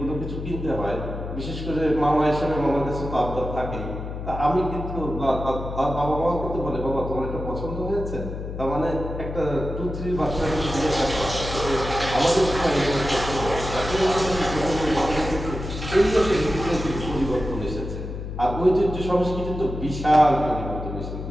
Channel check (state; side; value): noise; left; hum, 7 dB below the sound